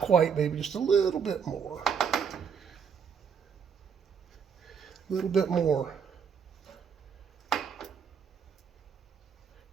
maybe just a little bit more. A little bit more.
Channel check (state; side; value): quieter; left; 6.8 dB